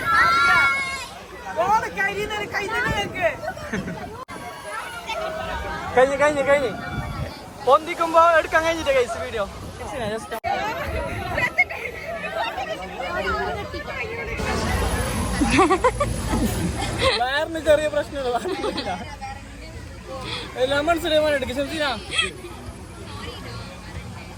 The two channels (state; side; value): identical; both; correlation 1.00